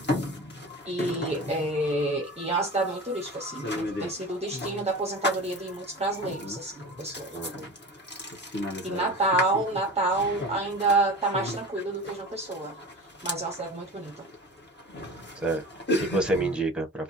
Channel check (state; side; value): normal; both; correlation 0.34